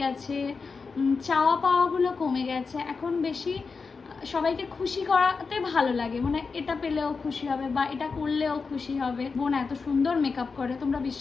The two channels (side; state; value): right; quieter; 4.8 dB